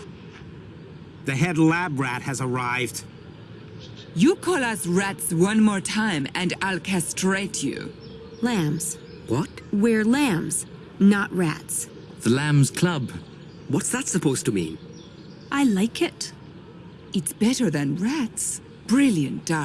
The head lab rat has arrived. You call us rats one more time and I'll castrate you. Lambs. What? We're lambs, not rats. The Lambs Club. What's that supposed to mean? I like it. It's better than rats. Brilliant,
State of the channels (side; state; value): both; identical; correlation 1.00